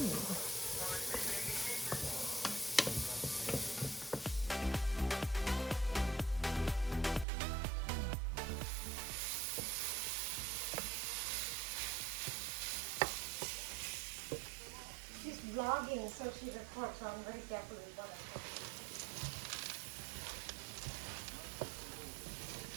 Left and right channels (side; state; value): left; drops out; at 7.2 s